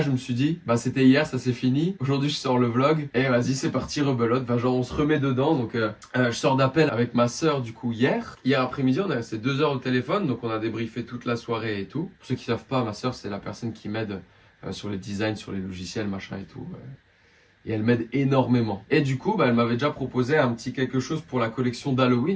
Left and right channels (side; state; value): both; identical; correlation 1.00